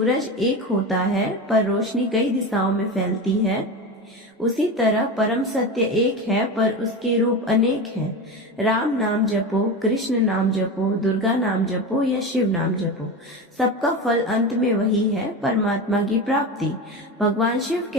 एक होता है पर रोशनी कई दिशाओं में फैलती है, उसी तरह परम सत्य एक है पर उसके रूप अनेक हैं। राम नाम जपो, कृष्ण नाम जपो, दुर्गा नाम जपो या शिव नाम जपो, सबका फल अंत में वही है, परमात्मा की प्राप्ति। भगवान शिव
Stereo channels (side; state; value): both; normal; correlation 0.23